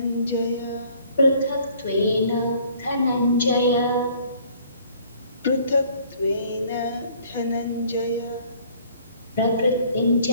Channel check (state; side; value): inverted; both; correlation -0.57